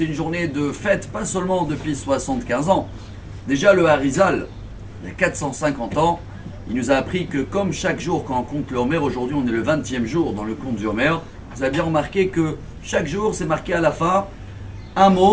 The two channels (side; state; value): both; identical; correlation 1.00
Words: une journée de fête, pas seulement depuis 75 ans. Déjà, le Harizal, il y a 450 ans, il nous a appris que comme chaque jour, quand on compte le Homer, aujourd'hui on est le 20e jour dans le compte du Homer, vous avez bien remarqué que chaque jour, c'est marqué à la fin un